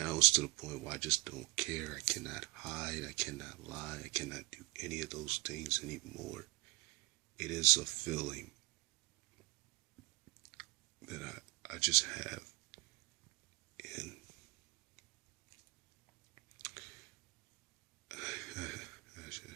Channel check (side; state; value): left; quieter; 26.6 dB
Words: it's to the point where I just don't care. I cannot hide, I cannot lie, I cannot do any of those things anymore. It is a feeling that I just have.